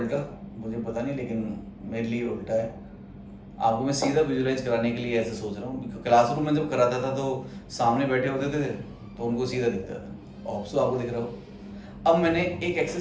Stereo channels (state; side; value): identical; both; correlation 1.00